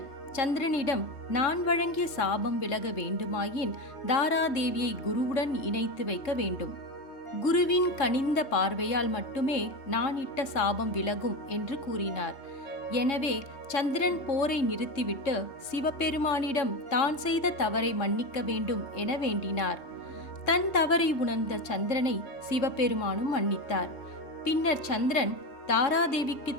சந்திரனிடம், நான் வழங்கிய சாபம் விலக வேண்டுமாயின் தாராதேவியை குருவுடன் இணைத்து வைக்க வேண்டும். குருவின் கனிந்த பார்வையால் மட்டுமே நான் இட்ட சாபம் விலகும் என்று கூறினார். எனவே சந்திரன் போரை நிறுத்திவிட்டு சிவபெருமானிடம் தான் செய்த தவறை மன்னிக்க வேண்டும் என வேண்டினார். தன் தவறை உணர்ந்த சந்திரனை சிவபெருமானும் மன்னித்தார். பின்னர் சந்திரன் தாராதேவிக்கு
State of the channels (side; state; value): right; late; 3.2 ms